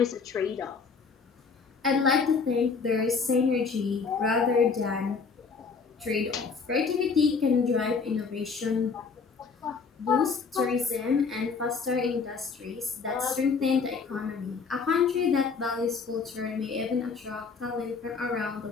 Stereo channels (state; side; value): quieter; right; 5.1 dB